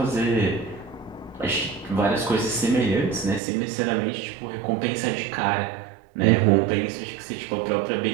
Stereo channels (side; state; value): left; drops out; at 3.4 s